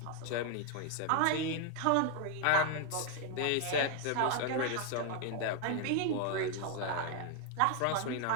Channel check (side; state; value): both; different; correlation 0.01